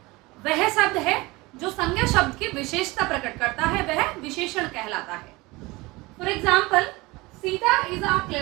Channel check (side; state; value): left; quieter; 22.4 dB